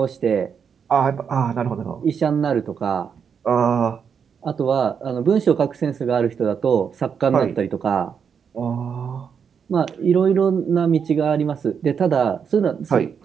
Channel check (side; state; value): left; quieter; 6.9 dB